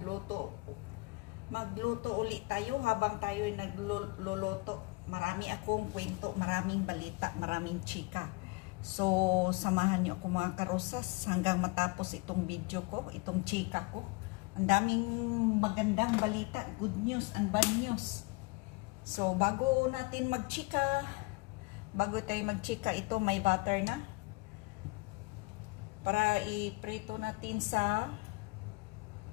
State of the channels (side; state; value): right; quieter; 26.0 dB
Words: Magluto ulit tayo habang tayo ay nagluluto. Marami akong kwento, maraming balita, maraming chika. So, samahan niyo ako mga karosas hanggang matapos itong video ko, itong chika ko. Ang daming magandang balita, good news and bad news. So, bago natin magchika, ito may butter na. Para iprito natin sa